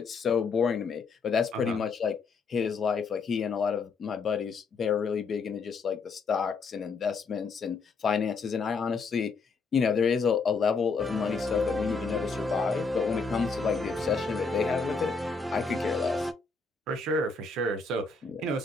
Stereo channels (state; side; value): quieter; right; 4.5 dB